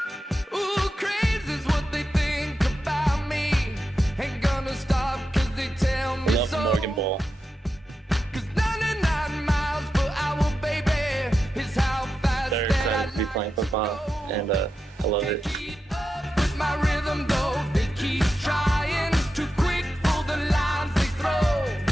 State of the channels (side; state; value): both; normal; correlation 0.89